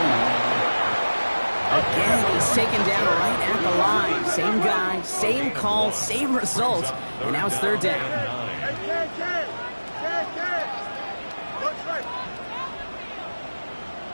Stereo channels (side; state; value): both; inverted; correlation -1.00